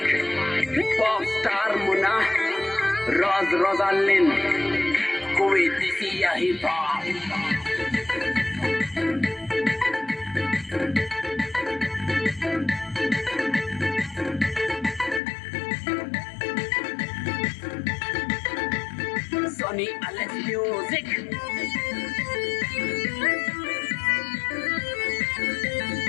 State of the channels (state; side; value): drops out; right; at 15.2 s